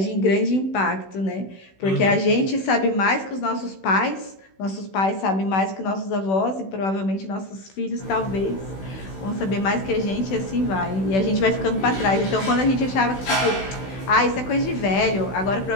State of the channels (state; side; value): late; right; 16 ms